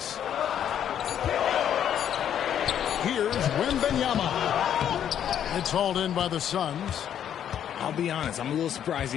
Here's Wembanyama. It's hauled in by the Suns. I'll be honest, I'm a little surprised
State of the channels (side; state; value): right; quieter; 9.6 dB